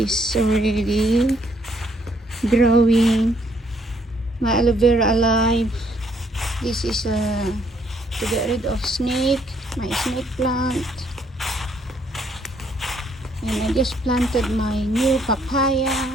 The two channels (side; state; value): both; normal; correlation 0.68